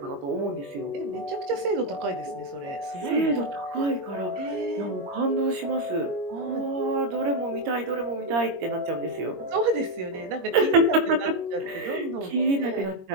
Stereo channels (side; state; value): left; late; 21 ms